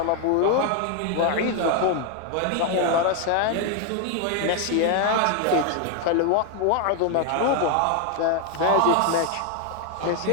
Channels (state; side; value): different; both; correlation 0.00